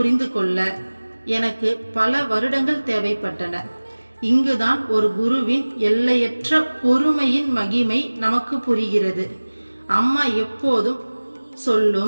கொள்ள எனக்கு பல வருடங்கள் தேவைப்பட்டன. இங்குதான் ஒரு குருவின் எல்லையற்ற பொறுமையின் மகிமை நமக்கு புரிகிறது. அம்மா எப்போதும்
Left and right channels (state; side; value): inverted; both; correlation -1.00